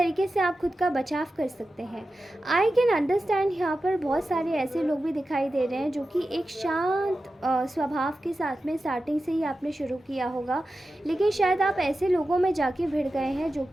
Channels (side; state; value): both; normal; correlation 0.92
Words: से आप खुद का बचाव कर सकते हैं। आई कैन अंडरस्टैंड, यहाँ पर बहुत सारे ऐसे लोग भी दिखाई दे रहे हैं जो कि एक शांत स्वभाव के साथ में स्टार्टिंग से ही आपने शुरू किया होगा, लेकिन शायद आप ऐसे लोगों में जाके भिड़ गए हैं जो